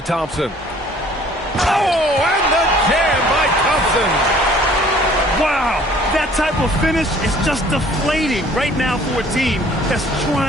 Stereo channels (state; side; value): normal; both; correlation 0.54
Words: Thompson. Oh, and the jam by Thompson. Wow, that type of finish is just deflating right now for a team that's